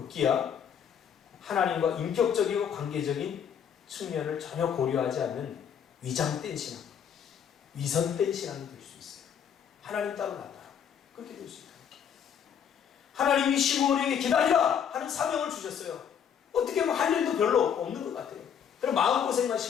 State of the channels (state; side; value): quieter; right; 8.2 dB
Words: 하나님과 인격적이고 관계적인 측면을 전혀 고려하지 않는 위장된 신앙, 위선된 신앙이 될 수 있어요. 하나님 따로 나타나 그렇게 될 수 있다. 하나님이 시므온에게 기다리라 하는 사명을 주셨어요. 어떻게 보면 할 일도 별로 없는 것 같아요. 그럼 마음고생만